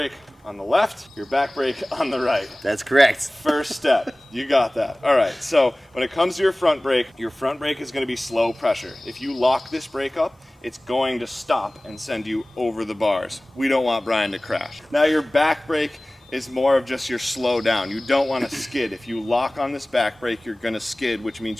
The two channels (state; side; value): normal; both; correlation 0.98